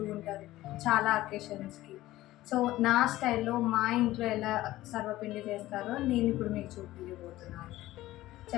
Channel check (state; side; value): quieter; right; 16.2 dB